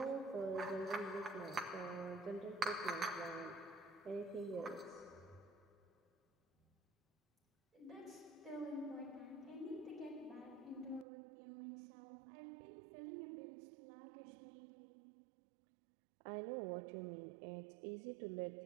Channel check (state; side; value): drops out; left; at 11.1 s